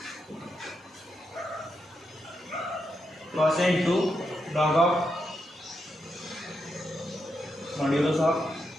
Cos a into log of modulus of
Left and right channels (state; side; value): normal; both; correlation 0.84